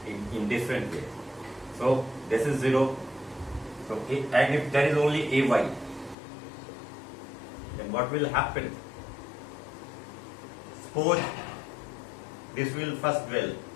in different way. So this is 0. So and if there is only ay, then what will happen? Suppose this will first dwell.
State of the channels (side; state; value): right; drops out; at 6.2 s